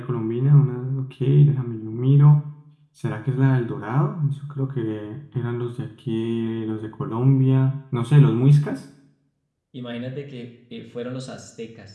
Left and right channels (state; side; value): identical; both; correlation 1.00